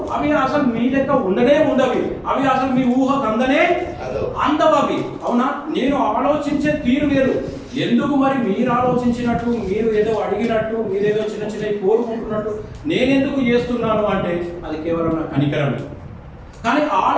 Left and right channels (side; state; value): both; identical; correlation 1.00